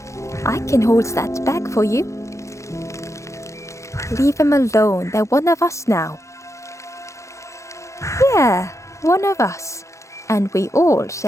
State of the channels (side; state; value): right; late; 0.15 ms